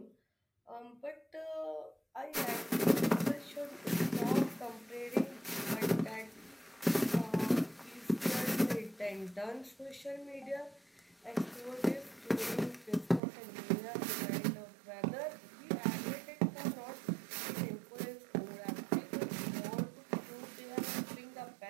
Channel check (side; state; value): left; drops out; at 13.2 s